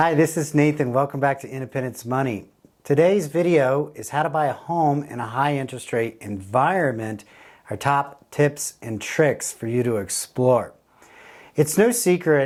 this is Nathan. Welcome back to Independence Money. Today's video is how to buy a home in a high interest rate environment, our top tips and tricks for you to explore. It's no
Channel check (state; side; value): identical; both; correlation 1.00